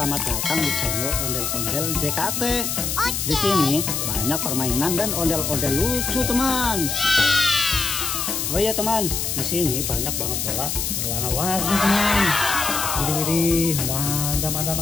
datang di channel Ondel-Ondel JKT. Di sini banyak permainan dan ondel-ondel lucu, teman. Oh iya teman, di sini banyak banget bola berwarna-warni, teman. Widih, mantap, mantap,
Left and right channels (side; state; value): left; noise; hiss, 1 dB below the sound